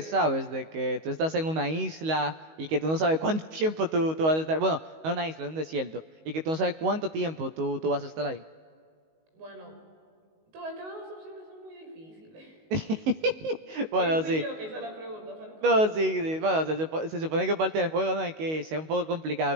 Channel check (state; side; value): late; left; 19 ms